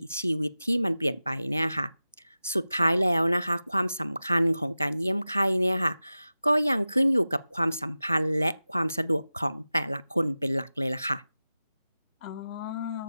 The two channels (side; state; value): both; inverted; correlation -0.95